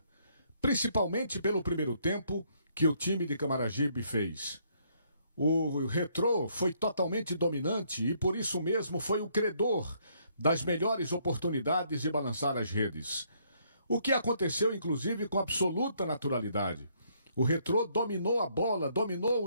Principalmente pelo primeiro tempo que o time de Camaragibe fez. O Retrô foi totalmente dominante e por isso mesmo foi o credor das melhores oportunidades de balançar as redes. O que aconteceu inclusive com absoluta naturalidade. O Retrô dominou a bola, dominou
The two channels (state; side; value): inverted; both; correlation -0.69